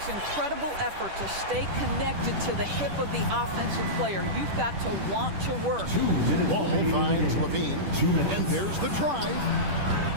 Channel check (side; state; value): left; late; 10 ms